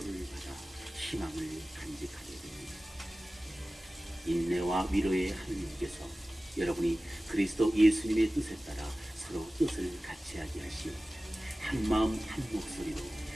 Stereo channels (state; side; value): normal; both; correlation 0.96